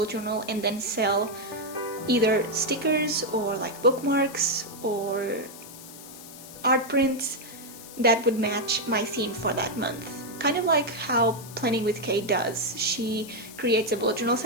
journal, and then sell either stickers or like bookmarks or art prints that would match my theme for that month. Kind of like how Planning with Kate does. She creates a bullet journal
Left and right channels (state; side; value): noise; left; hiss, 16 dB below the sound